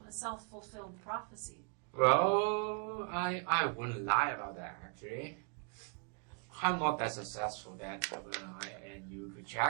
a self-fulfilled prophecy. Well, I wouldn't lie about that, actually. I'm not that successful that and you could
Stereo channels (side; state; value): left; quieter; 37.8 dB